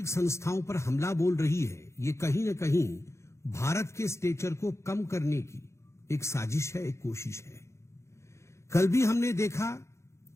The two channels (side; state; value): right; late; 0.14 ms